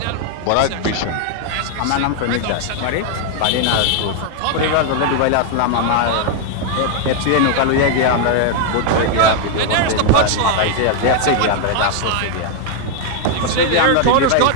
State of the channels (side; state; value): both; different; correlation 0.00